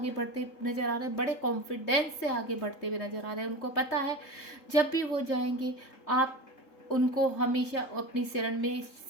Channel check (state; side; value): late; right; 3.7 ms